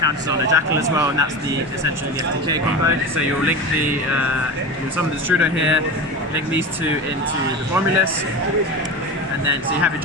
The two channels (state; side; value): normal; both; correlation 0.26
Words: on a Jackal as well, and that's essentially the FTK combo. So you'll link you'll summon the Strudo here, link these two into the Romulus, and then so you have your